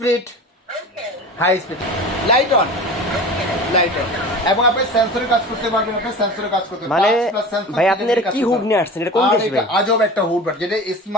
High speed. Light on. Light on. এবং আপনি সেন্সরের কাজ করতে পারবেন, আপনি সেন্সরের কাজ করতে মানে ভাই আপনি এর কি হুড নিয়ে আসছেন? এটা কোন দেশ ভাই? আজব একটা হুড, যেটা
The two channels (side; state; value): both; normal; correlation 0.34